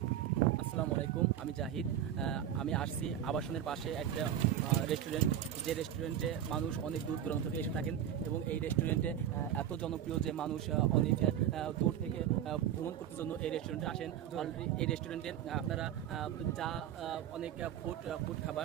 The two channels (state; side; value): quieter; left; 10.4 dB